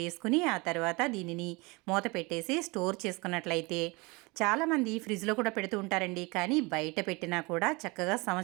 ఆ తర్వాత దీనిని మూత పెట్టేసి స్టోర్ చేసుకున్నట్లయితే చాలామంది ఫ్రిడ్జ్లో కూడా పెడుతూ ఉంటారండి. కానీ బయట పెట్టినా కూడా చక్కగా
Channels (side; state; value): left; quieter; 26.0 dB